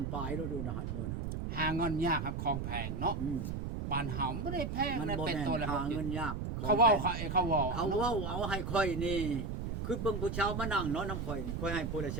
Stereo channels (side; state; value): right; noise; rumble, 3 dB below the sound